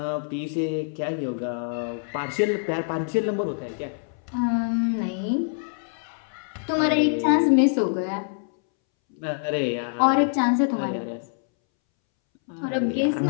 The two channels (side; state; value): right; silent; 62 dB below the other